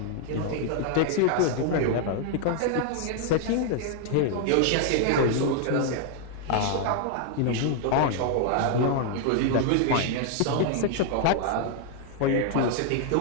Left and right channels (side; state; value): both; different; correlation 0.00